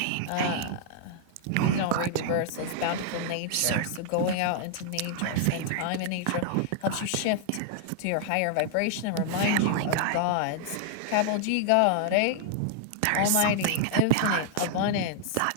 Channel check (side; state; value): both; different; correlation -0.01